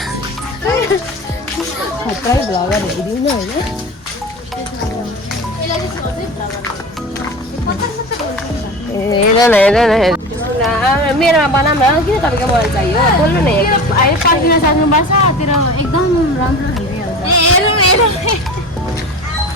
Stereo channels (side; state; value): both; normal; correlation 0.32